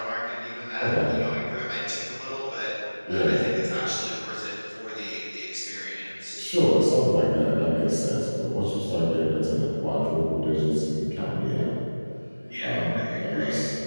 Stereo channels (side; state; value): both; inverted; correlation -1.00